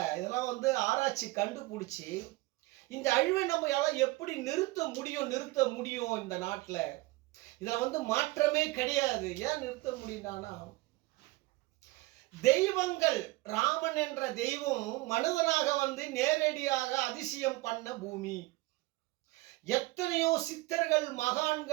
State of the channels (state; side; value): quieter; left; 21.2 dB